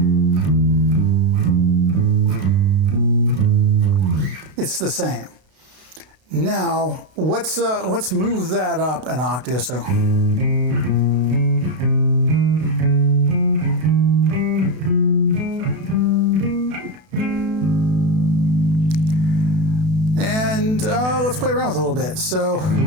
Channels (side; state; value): left; late; 32 ms